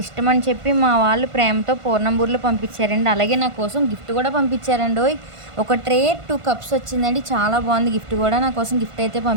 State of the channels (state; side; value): late; left; 1.5 ms